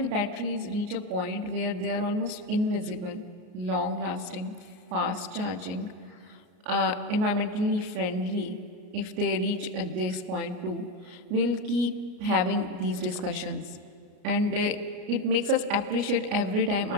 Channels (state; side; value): late; left; 33 ms